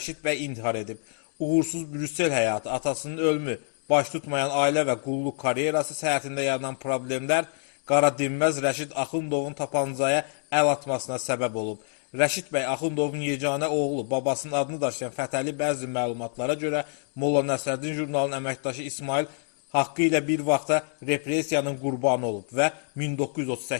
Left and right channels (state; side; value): silent; right; digital silence